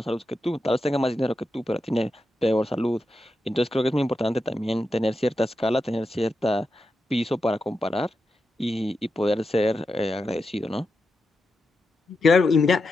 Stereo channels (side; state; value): both; normal; correlation 0.88